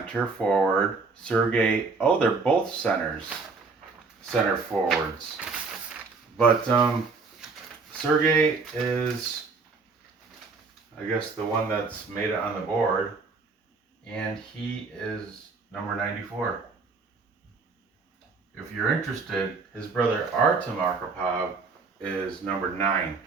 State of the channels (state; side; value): quieter; left; 4.4 dB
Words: forward. Sergei, they're both center forwards. But Sergei is, I guess, the one that's made it on the board, and he is number 94. If you're interested, his brother Artem Arkhipov is number 9.